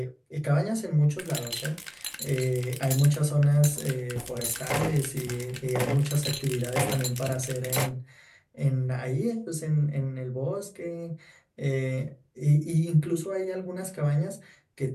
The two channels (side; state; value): both; identical; correlation 1.00